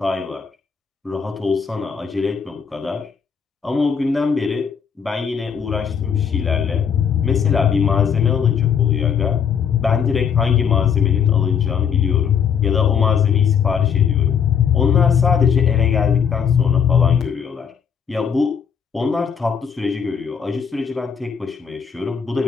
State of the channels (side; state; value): right; quieter; 7.2 dB